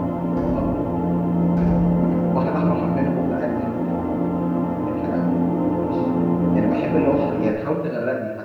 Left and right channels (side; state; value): both; identical; correlation 1.00